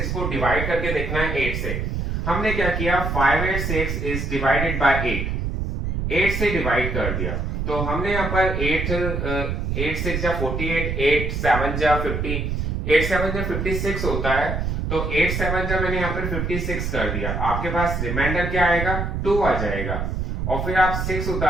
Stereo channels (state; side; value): noise; right; rumble, 2 dB below the sound